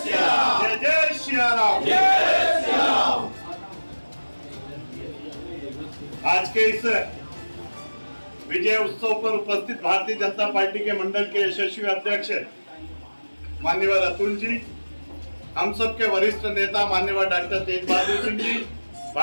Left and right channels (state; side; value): inverted; both; correlation -1.00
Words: जय श्री राम। आज के इस विजय उत्सव पर उपस्थित भारतीय जनता पार्टी के मंडल के यशस्वी अध्यक्ष माननीय अतुल जी, हम सब के वरिष्ठ नेता माननीय डॉक्टर तेज बहादुर सिंह जी,